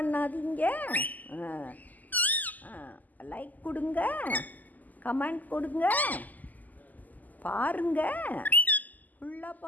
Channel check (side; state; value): right; late; 0.082 ms